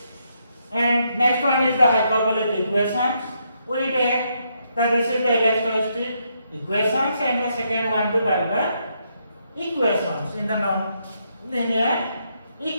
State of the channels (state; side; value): inverted; both; correlation -0.77